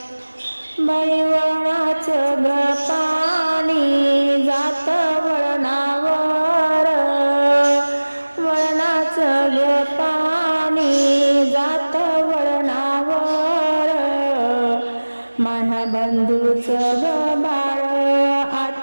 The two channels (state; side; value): inverted; both; correlation -1.00